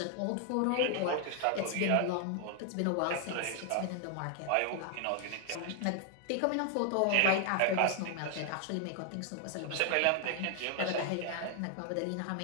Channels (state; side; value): different; both; correlation 0.00